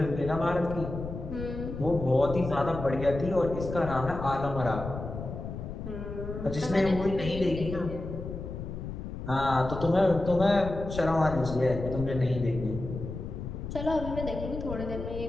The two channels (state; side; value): noise; left; rumble, 8 dB below the sound